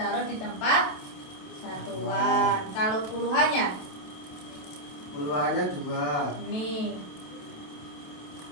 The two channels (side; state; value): right; late; 27 ms